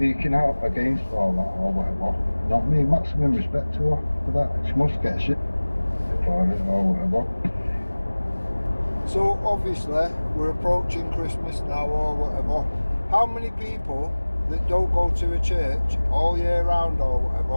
out against all that or whatever, you know what I mean? Maximum respect to her for that. She must get shit for it or whatever. So obviously we're approaching Christmas now or whatever. How many people that don't go to a church all year round or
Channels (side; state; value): both; inverted; correlation -1.00